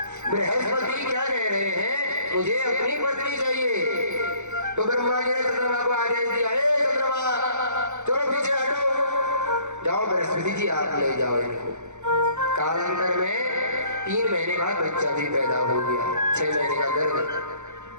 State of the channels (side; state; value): left; late; 0.84 ms